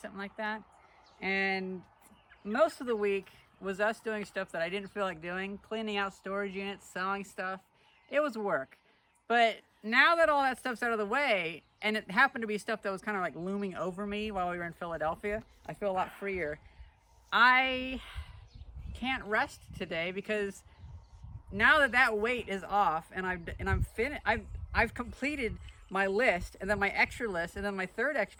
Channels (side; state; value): both; identical; correlation 1.00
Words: like that. And most of the week was us doing stuff that I didn't feel like doing, cleaning out storage units, selling stuff. It was work. But now that all that stuff's out of the way, and it happened to be stuff that was kind of like looming over me while we were in Philadelphia, I feel a lot freer. I can't rest today because now that that weight is off and I've completed my list, and then my extra list, and then my third